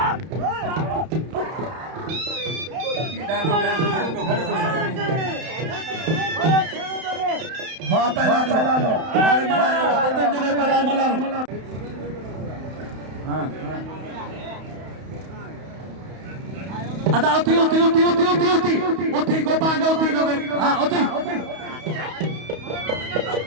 अदा उठी उठी उठी उठी उठी उठी उठी को पांगे उठी को हां उठी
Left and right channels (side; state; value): left; late; 31 ms